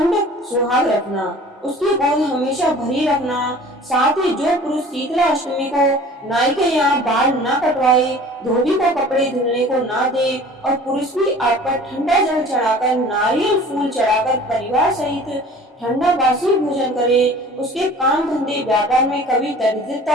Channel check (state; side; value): normal; both; correlation 0.45